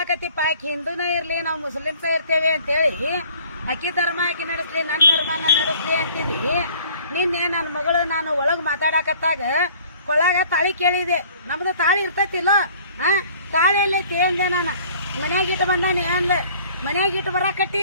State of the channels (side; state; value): both; inverted; correlation -0.53